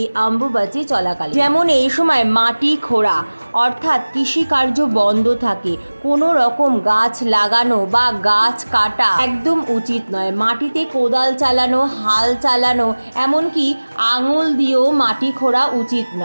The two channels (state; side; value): inverted; both; correlation -1.00